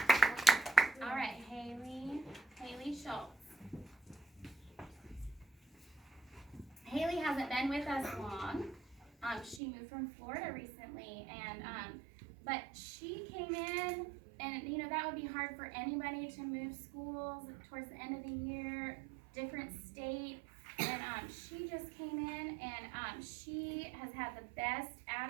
All right, Haley Schultz. Haley hasn't been with us long. She moved from Florida recently, and but she came in, and you know that would be hard for anybody to move schools towards the end of the year, different state, and she just came in, and she has had the best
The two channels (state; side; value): drops out; left; at 9.6 s